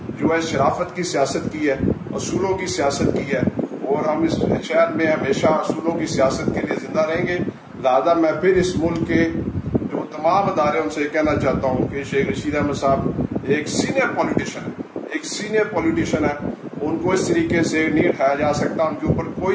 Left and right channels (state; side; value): identical; both; correlation 1.00